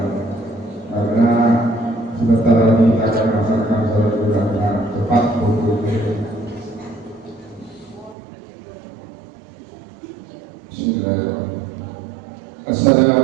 karena sebentar lagi kita akan melaksanakan sholat Idul Adha tepat pukul 7. Bismillahirrahmanirrahim.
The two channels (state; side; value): drops out; left; at 8.2 s